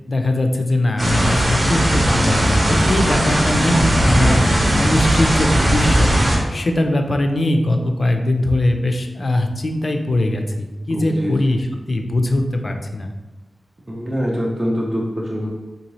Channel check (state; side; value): normal; both; correlation 0.94